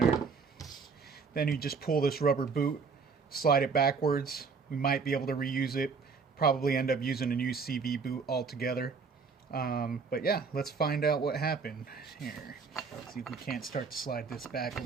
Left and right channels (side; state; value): left; quieter; 5.1 dB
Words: Then you just pull this rubber boot, slide it backwards. We might be able to reuse it, probably end up using a new CV boot altogether. But yeah, let's find out what happened here. See if we can't start to slide this back a